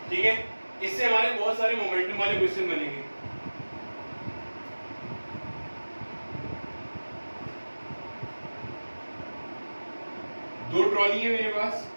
ठीक है, इससे हमारे बहुत सारे मोमेंटम वाले क्वेश्चन बनेंगे। दो ट्रॉली है मेरे पास,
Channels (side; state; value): both; inverted; correlation -1.00